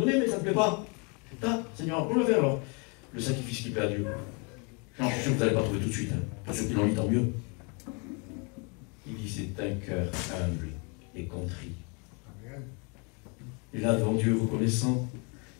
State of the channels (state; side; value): quieter; right; 33.6 dB